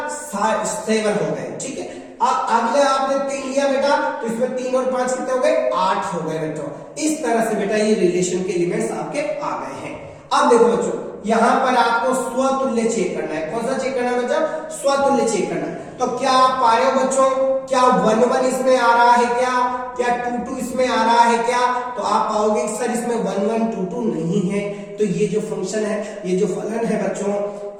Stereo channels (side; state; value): both; identical; correlation 1.00